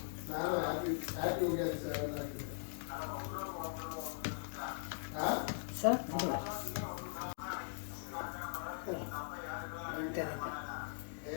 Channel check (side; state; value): right; silent; digital silence